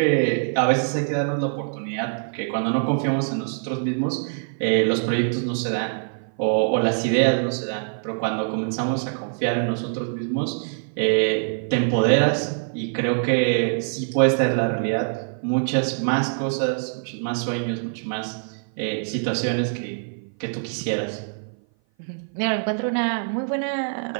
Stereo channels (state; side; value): silent; left; 57 dB below the other